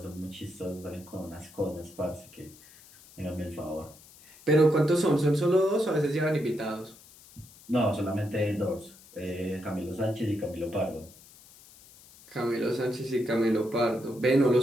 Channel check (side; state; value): left; noise; hiss, 23 dB below the sound